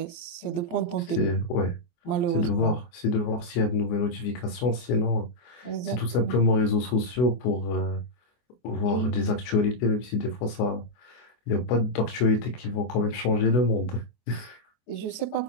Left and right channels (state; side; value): late; right; 24 ms